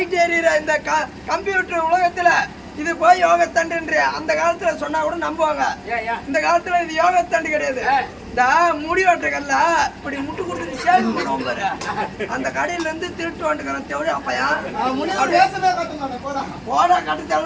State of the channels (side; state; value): both; identical; correlation 1.00